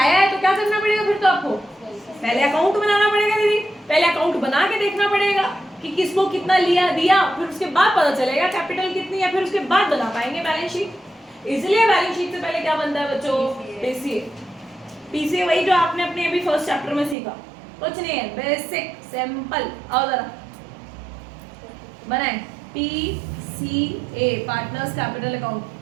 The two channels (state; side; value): drops out; left; at 17.2 s